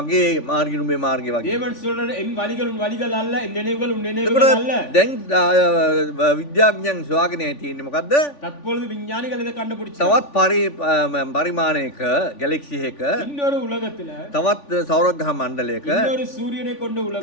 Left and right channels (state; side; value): late; right; 3.5 ms